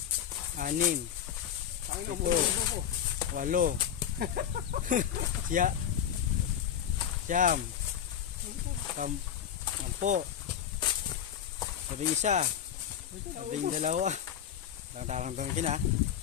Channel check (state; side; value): quieter; right; 9.3 dB